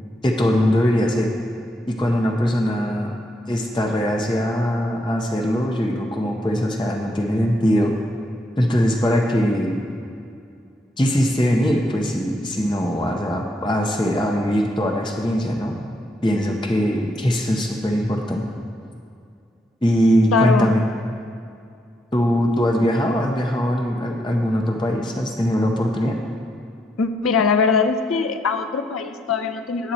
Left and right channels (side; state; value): both; normal; correlation 0.78